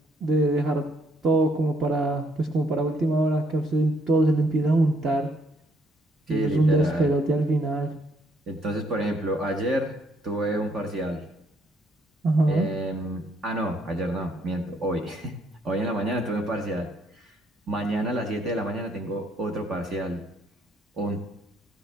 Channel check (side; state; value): both; normal; correlation 0.69